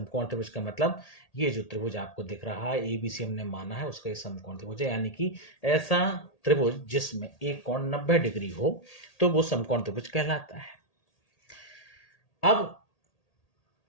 त्रिभुज का मतलब ये जो त्रिभुज आपको दिख रहा है, एबीसी हमने माना है, उसका ये समकोण त्रिभुज है, यानी कि ऐसा त्रिभुज जिसमें एक कोण 90 डिग्री हो, तो वो समकोण त्रिभुज कहलाता है। अब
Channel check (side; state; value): right; late; 1.8 ms